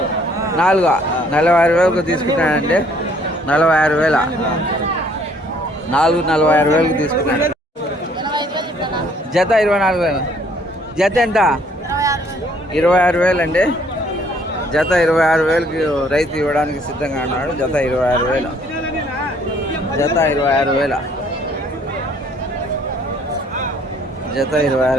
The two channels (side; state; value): both; normal; correlation 0.62